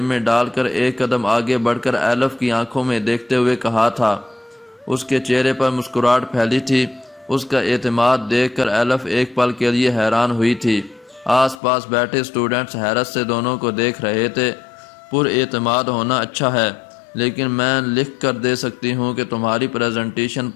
میں ڈال کر ایک قدم آگے بڑھ کر ایلف کی آنکھوں میں دیکھتے ہوئے کہا تھا۔ اس کے چہرے پر مسکراہٹ پھیلی تھی۔ اس کا اعتماد دیکھ کر ایلف ایک پل کے لیے حیران ہوئی تھی۔ آس پاس بیٹھے اسٹوڈنٹس حیرت سے دونوں کو دیکھ رہے تھے۔ پر اعتماد ہونا اچھا ہے، لیکن میں لکھ کر دے سکتی ہوں کہ تمہاری پریزنٹیشن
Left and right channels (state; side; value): drops out; right; at 11.6 s